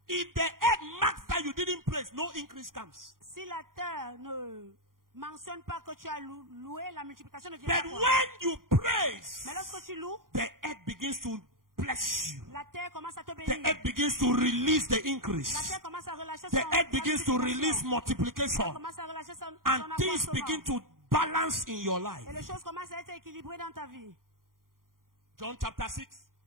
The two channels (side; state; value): left; late; 0.91 ms